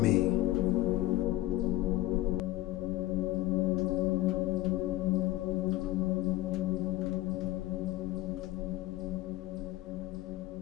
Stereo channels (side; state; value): right; quieter; 17.1 dB